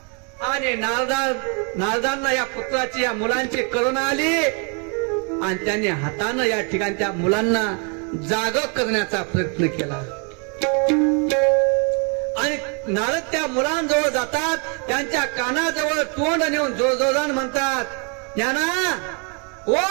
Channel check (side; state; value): left; quieter; 36.5 dB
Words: आणि नारदांना या पुत्राची या मुलांची करुणा आली आणि त्यांनी हातानं या ठिकाणी त्या मुलांना जाग करण्याचा प्रयत्न केला. आणि नारद त्या मुलांजवळ जातात. त्यांच्या कानाजवळ तोंड नेऊन जोरजोरान म्हणतात, ज्ञाना